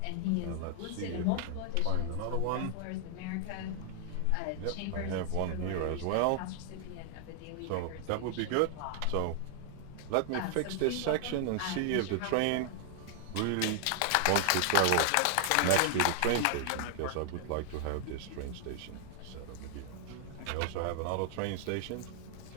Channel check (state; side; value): different; both; correlation 0.00